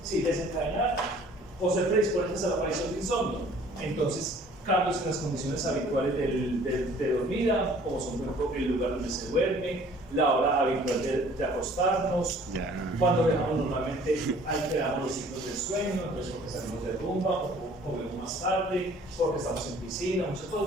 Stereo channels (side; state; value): both; normal; correlation 0.53